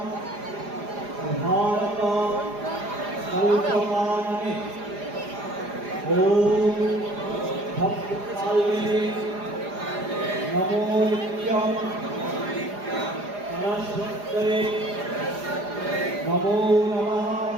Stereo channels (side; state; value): left; late; 4.9 ms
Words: नमो नित्यं सरस्वत्यै नमो नमः